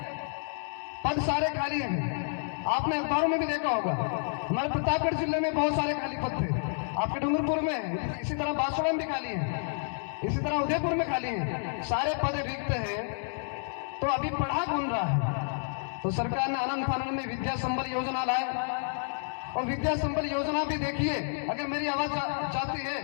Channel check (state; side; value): silent; right; 58 dB below the other